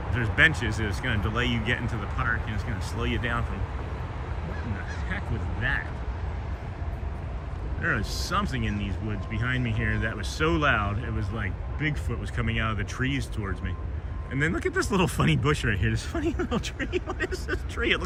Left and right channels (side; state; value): both; identical; correlation 1.00